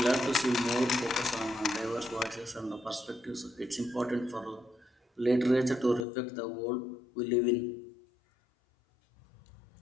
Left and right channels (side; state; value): right; drops out; at 6.1 s